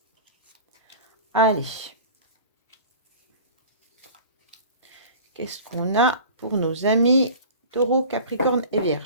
Allez. Qu'est-ce qu'on a pour nos amis Taureau, Capricorne et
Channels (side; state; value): both; inverted; correlation -0.40